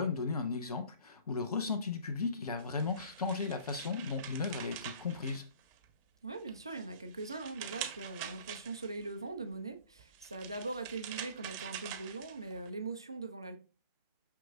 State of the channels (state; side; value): inverted; both; correlation -0.50